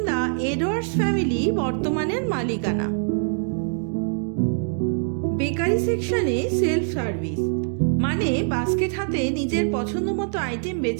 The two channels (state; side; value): silent; left; 63 dB below the other